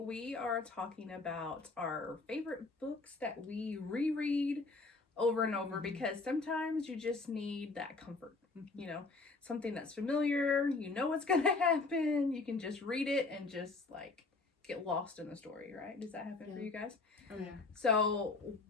are talking about our favorite books that we reread over and over because sometimes you just need that comfort, you know, something that's familiar, you know what's going to happen, you can just read it and just like get lost in the story, right? Does that happen for you guys? Oh yeah. So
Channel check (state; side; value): quieter; right; 3.8 dB